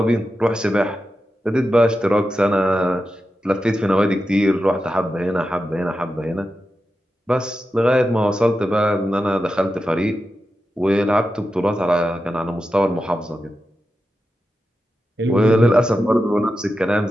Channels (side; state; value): both; normal; correlation 0.90